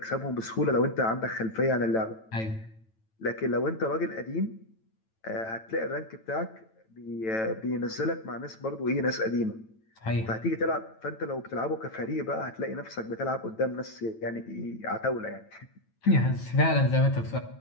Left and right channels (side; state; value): right; late; 9.0 ms